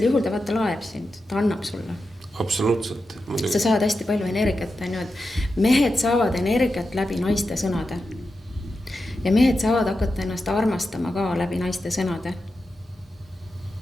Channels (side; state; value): both; normal; correlation 0.90